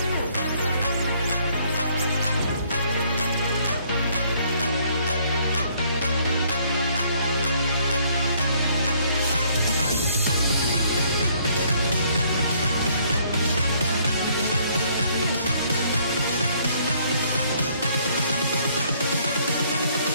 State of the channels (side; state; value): both; inverted; correlation -0.65